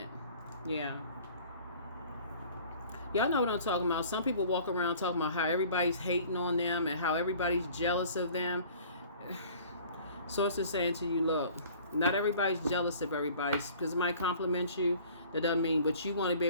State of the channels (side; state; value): both; inverted; correlation -0.50